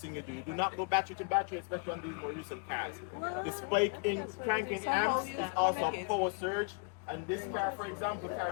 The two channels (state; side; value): quieter; right; 35.7 dB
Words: thing you do. You do not go battery to battery, especially on these more recent cars. The spike in cranking amps is also a power surge, and this car, for example,